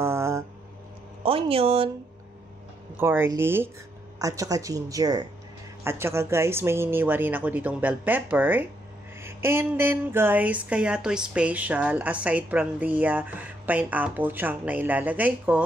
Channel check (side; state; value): both; normal; correlation 0.76